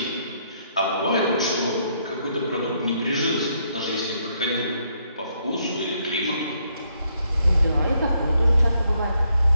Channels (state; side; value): inverted; both; correlation -0.73